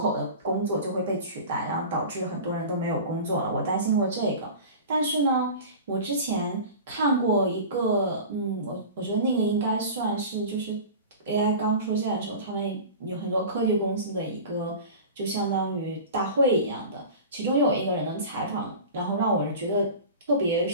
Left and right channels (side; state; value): both; inverted; correlation -0.35